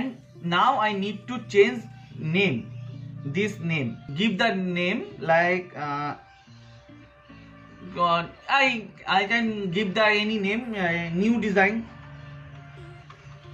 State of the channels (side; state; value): both; identical; correlation 1.00